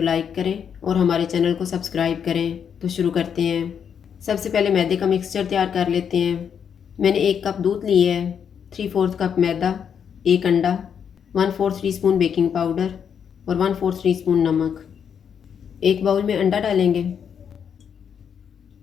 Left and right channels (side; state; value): right; quieter; 7.7 dB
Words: लाइक करें और हमारे चैनल को सब्सक्राइब करें। तो शुरू करते हैं। सबसे पहले मैदे का मिक्सचर तैयार कर लेते हैं। मैंने 1 कप दूध लिए है, 3/4 कप मैदा, 1 अंडा, 1/4 टीस्पून बेकिंग पाउडर और 1/4 टीस्पून नमक। एक बाउल में अंडा डालेंगे,